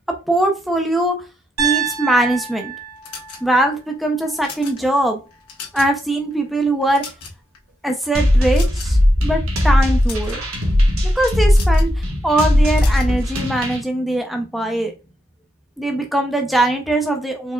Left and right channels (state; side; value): normal; both; correlation 0.81